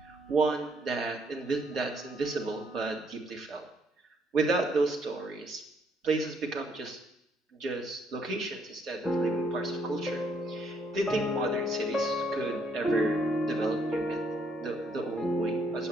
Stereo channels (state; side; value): normal; both; correlation 0.69